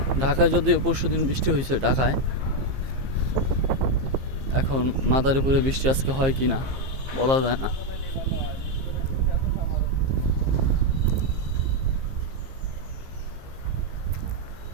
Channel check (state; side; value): late; left; 15 ms